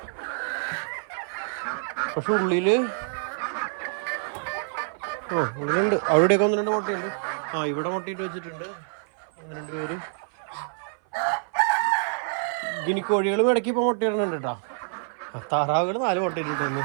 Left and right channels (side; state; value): left; silent; 56 dB below the other